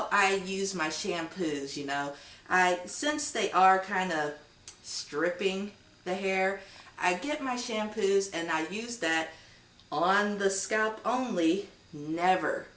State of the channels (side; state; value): both; identical; correlation 1.00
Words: I use my shampoos, you know. Since they are kind of stripping the hair, I get my shampoos and I use that on the scalp only.